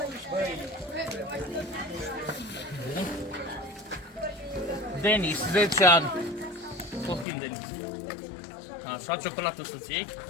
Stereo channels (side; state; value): right; drops out; at 7.2 s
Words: Denis, 10 ani. Copil Denis. Așa, ciocolată să-ți iei.